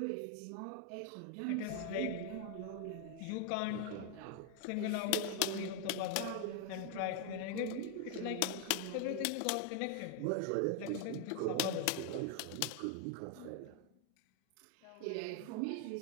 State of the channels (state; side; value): different; both; correlation 0.01